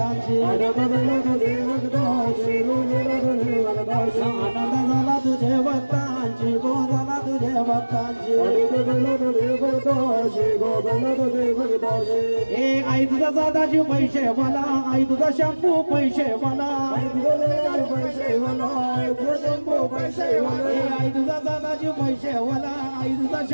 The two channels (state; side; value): inverted; both; correlation -1.00